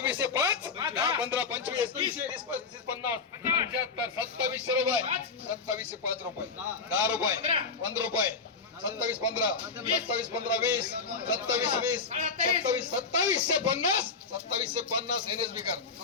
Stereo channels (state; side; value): quieter; right; 4.7 dB